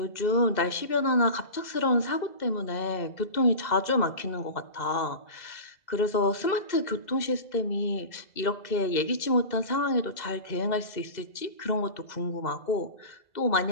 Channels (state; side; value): late; right; 2.0 ms